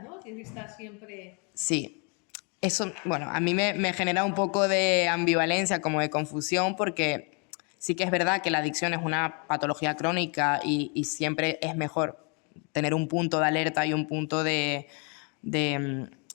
¿no? Tienes que estar siempre... Sí, eso, bueno, a mí me genera un poco de ambivalencia, como de confusión, porque sí que es verdad que la adicción es una patología crónica y siempre es mejor tener un punto de alerta y un punto de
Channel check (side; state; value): right; quieter; 35.5 dB